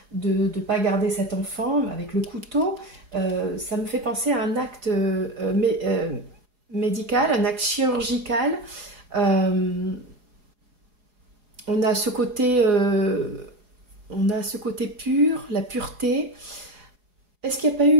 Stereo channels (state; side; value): late; left; 4.8 ms